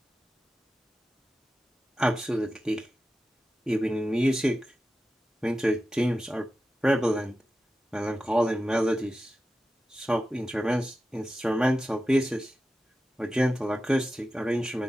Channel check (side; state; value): both; normal; correlation 0.93